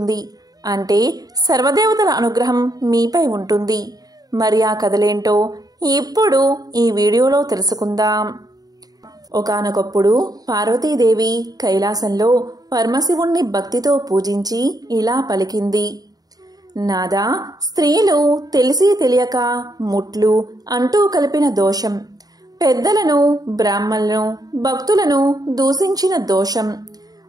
అంటే సర్వదేవతల అనుగ్రహం మీపై ఉంటుంది. మరి ఆ కథలేంటో ఇప్పుడు ఈ వీడియోలో తెలుసుకుందాం. ఒకానొకప్పుడు పార్వతీదేవి కైలాసంలో పరమశివుణ్ణి భక్తితో పూజించి ఇలా పలికింది. నాదా, స్త్రీలు తెలిసి తెలియక ముట్లు అంటూ కలిపిన దోషం, పెద్దలను, బ్రాహ్మణులను, భక్తులను దూషించిన దోషం,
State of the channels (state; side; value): late; left; 0.18 ms